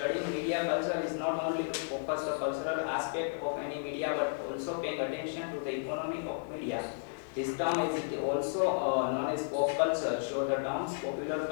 media culture is not only to focus the cultural aspect of any media but also paying attention to the economy of media. This term is also known as pop culture, so the terms popular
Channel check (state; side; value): silent; right; digital silence